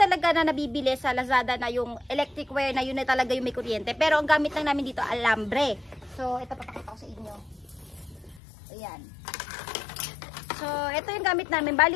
na nabibili sa Lazada na yung electric wire na yun na talaga yung may kuryente. Pero ang gamit lang namin dito, alambre. So ito papakita ko sa inyo. Ayan. So ito yung gamit namin.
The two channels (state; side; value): drops out; right; at 8.4 s